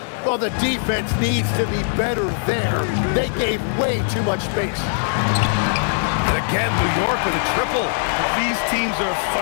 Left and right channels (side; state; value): right; silent; 64 dB below the other